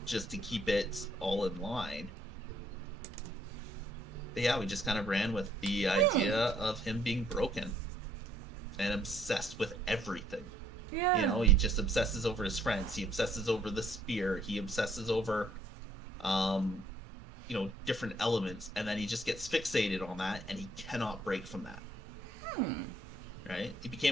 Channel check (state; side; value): normal; both; correlation 0.66